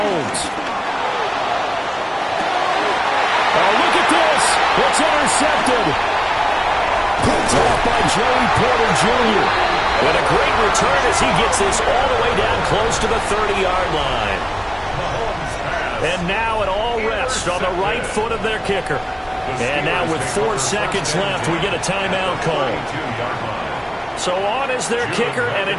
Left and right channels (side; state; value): both; identical; correlation 1.00